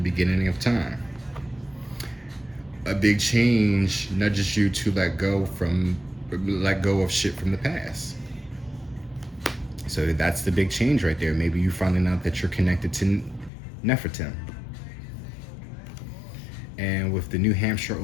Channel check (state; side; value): drops out; right; at 13.5 s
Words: beginning of time. A big change nudges you to let go of shit from the past. So that's the big change right there. Maybe you finding out that you're connected to Nefertim. And with the New Hampshire,